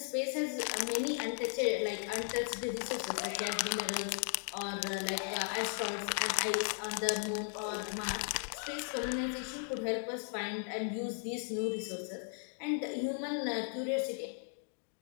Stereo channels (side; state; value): right; silent; 53 dB below the other